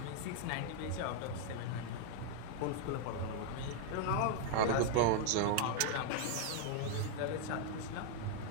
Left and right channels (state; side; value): different; both; correlation 0.00